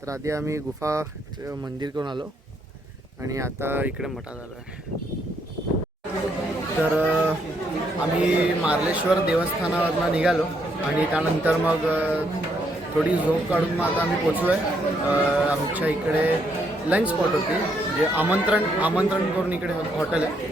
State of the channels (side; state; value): both; normal; correlation 0.74